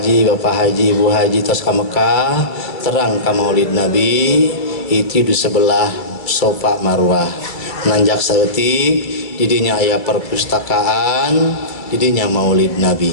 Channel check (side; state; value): right; late; 2.3 ms